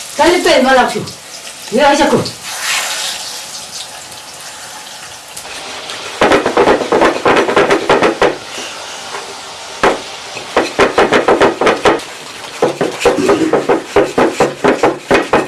Dale pe, mă lac. Ia aici acum.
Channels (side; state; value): both; identical; correlation 1.00